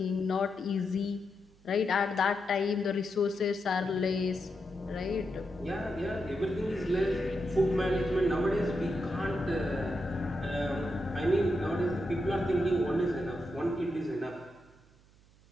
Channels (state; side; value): noise; right; hum, 28 dB below the sound